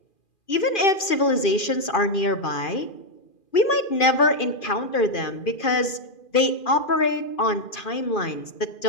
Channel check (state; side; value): late; right; 2.4 ms